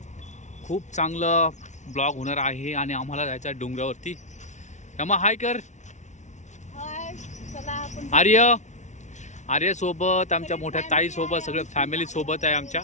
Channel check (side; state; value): right; late; 0.34 ms